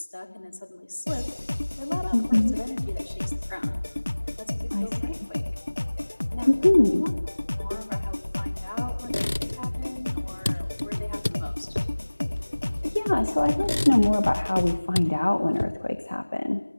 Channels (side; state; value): both; inverted; correlation -1.00